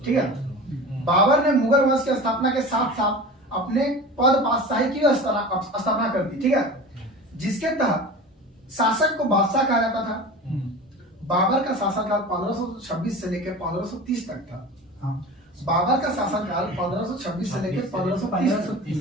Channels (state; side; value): normal; both; correlation 0.34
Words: ठीक है। बाबर ने मुगल वंश की स्थापना के साथ साथ अपने पद बादशाही की स्थापना कर दी, ठीक है, जिसके तहत शासक को बादशाह कहा जाता था। बाबर का शासनकाल 1526 से लेकर 1530 तक था। बाबर का शासनकाल 1526 से लेकर